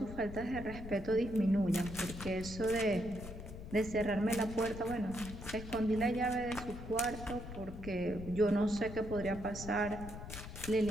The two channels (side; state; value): left; noise; rumble, 10 dB below the sound